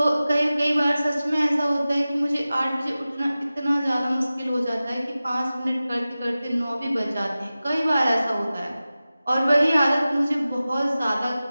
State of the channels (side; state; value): both; inverted; correlation -0.96